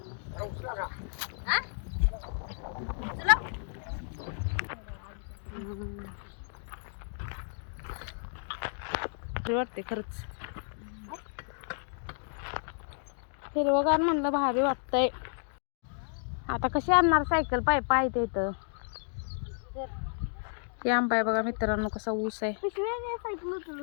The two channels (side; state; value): right; silent; digital silence